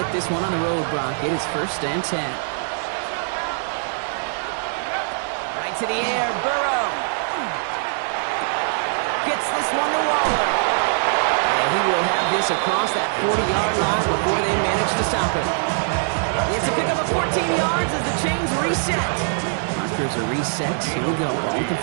this one on the road, Brock. It is 1st and 10. Right to the air, Burrow. Gets this one to Waller. And he will have this across that 40-yard line before they manage to stop him. It's a pickup of 14 yards as the chains reset. Markers are reset. Here we go. Ball at the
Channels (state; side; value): silent; left; digital silence